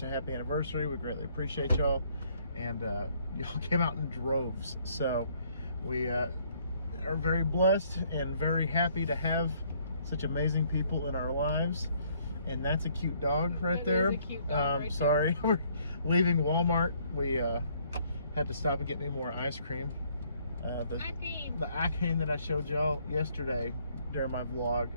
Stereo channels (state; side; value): inverted; both; correlation -0.65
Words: a happy anniversary, we greatly appreciate y'all. And y'all came out in droves. So, we are very blessed and very happy to have such amazing people in our lives. And that's a cute dog right there. Is a cute dog right sorry, we're leaving Walmart. We had to stop and get me more ice cream. The ice cream that I showed y'all yesterday during my